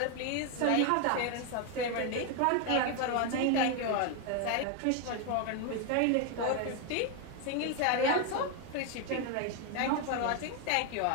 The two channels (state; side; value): different; both; correlation 0.01